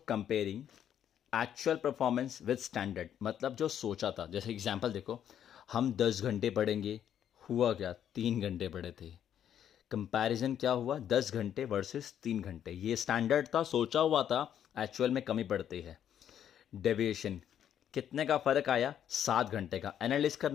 comparing actual performance with standard, मतलब जो सोचा था। जैसे एग्जांपल देखो, हम 10 घंटे पढ़ेंगे, हुआ क्या, 3 घंटे पढ़े थे। कंपैरिजन क्या हुआ, 10 घंटे वर्सेस 3 घंटे, ये स्टैंडर्ड था, सोचा हुआ था, एक्चुअल में कमी पड़ती है। डेविएशन, कितने का फ़र्क आया, 7 घंटे का। एनालिस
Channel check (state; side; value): quieter; right; 9.7 dB